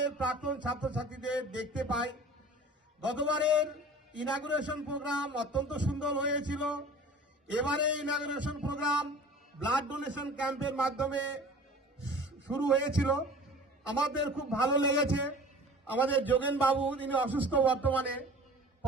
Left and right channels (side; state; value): both; normal; correlation 0.43